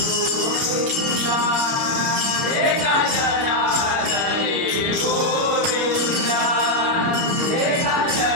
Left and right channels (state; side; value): late; left; 30 ms